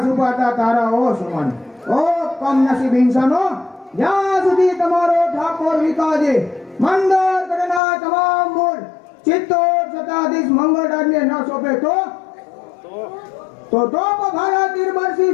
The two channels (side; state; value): right; drops out; at 7.8 s